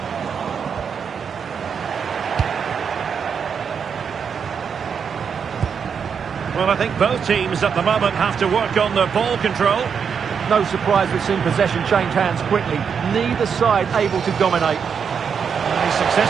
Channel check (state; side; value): quieter; left; 6.7 dB